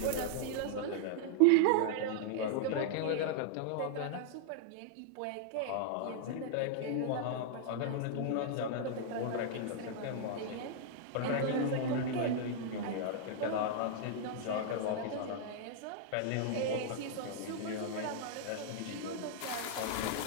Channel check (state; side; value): different; both; correlation -0.01